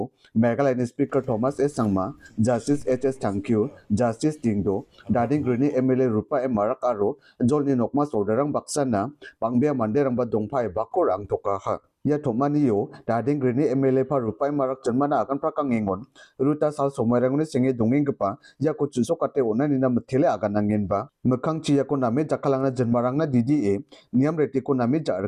Megalani Speaker Thomas S. Sangma, Justice H.S. Thankyu, Justice Dingdo, Darling Grini MLA Rupa M. Marakaro, Jolni Nokma Sodarang Baksana, Pangbia Manderang Badongpai Bakorang Tokaha. Ya thomani yo Darling Grini MLA pa Rupai Marak Janmana akan prakang ingon Ruta sal somarangni singe dongeng gepa ya ko chuso kate onani na mthele akan angin ba mekhang chi ya ko name jakalangna janmarangna DDA niam reti ko name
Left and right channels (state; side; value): identical; both; correlation 1.00